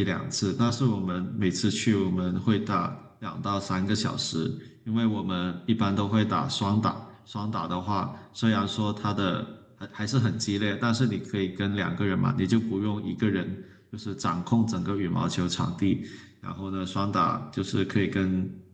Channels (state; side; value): identical; both; correlation 1.00